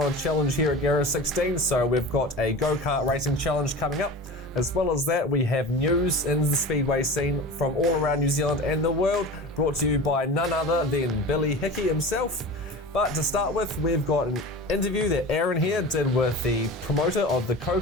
a challenge here at Garage 16, so we've got a go-kart racing challenge coming up. As well as that, we have news in the Speedway scene from all around New Zealand and the world, brought to you by none other than Billy Hickey himself. But to start with, we've got an interview that Aaron here did with the promoter of the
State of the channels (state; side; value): normal; both; correlation 0.33